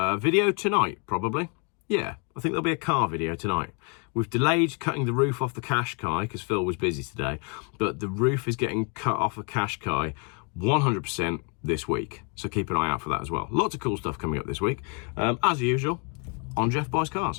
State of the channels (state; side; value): quieter; right; 36.0 dB